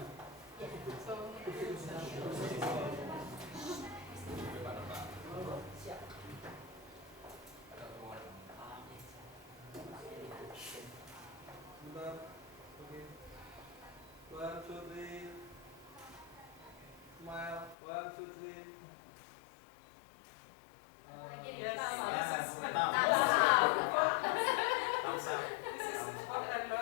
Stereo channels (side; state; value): right; drops out; at 17.8 s